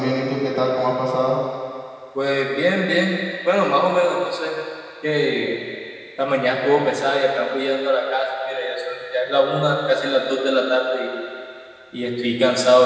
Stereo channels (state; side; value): identical; both; correlation 1.00